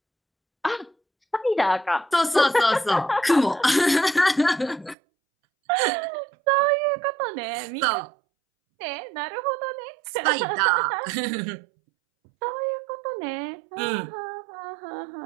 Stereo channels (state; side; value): drops out; left; at 5.0 s